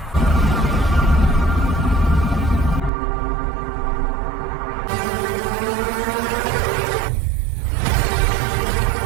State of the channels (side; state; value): left; drops out; at 2.9 s